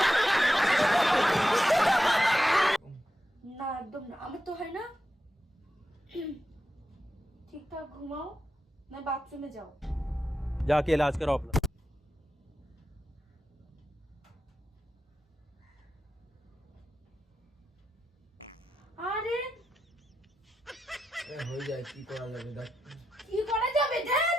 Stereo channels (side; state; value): both; normal; correlation 0.88